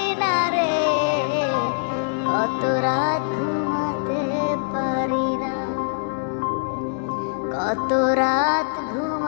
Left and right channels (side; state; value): right; silent; digital silence